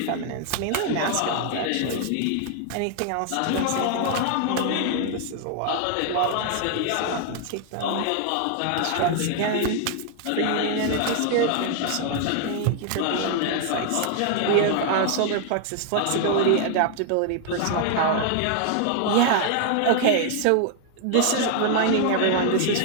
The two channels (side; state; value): both; different; correlation 0.00